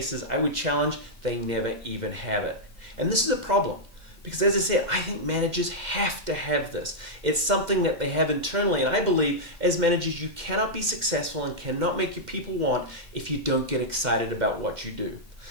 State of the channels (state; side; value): late; left; 2.0 ms